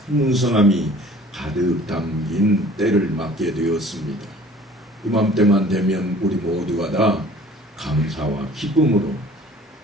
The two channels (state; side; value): normal; both; correlation 0.49